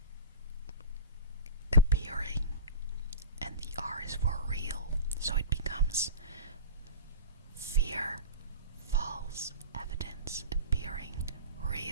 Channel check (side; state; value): both; inverted; correlation -0.32